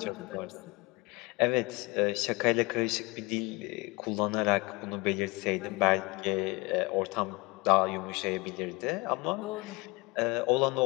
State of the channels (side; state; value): right; quieter; 25.3 dB